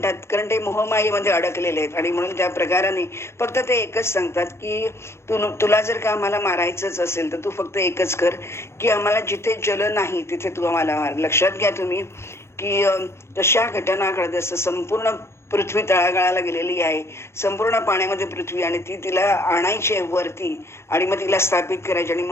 कारण ते मोहमायेमध्ये अडकलेले आहेत. आणि म्हणून त्या प्रकाराने फक्त ते एकच सांगतात की तुला जर का आम्हाला मारायचंच असेल तर तू फक्त एकच कर की आम्हाला जिथे जल नाही तिथे तू आम्हाला मार. लक्षात घ्या तुम्ही की तशा घटना घडत असं संपूर्ण पृथ्वी तळागाळाला गेलेली आहे, संपूर्ण पाण्यामध्ये पृथ्वी, आणि ती तिला आणायची आहे वरती आणि मग तिला स्थापित करायची. आणि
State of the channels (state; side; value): late; right; 0.13 ms